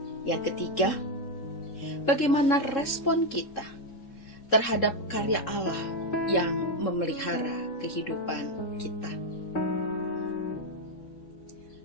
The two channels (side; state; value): right; late; 3.7 ms